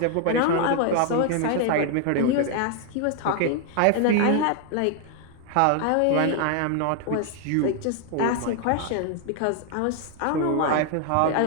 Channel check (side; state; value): both; different; correlation 0.00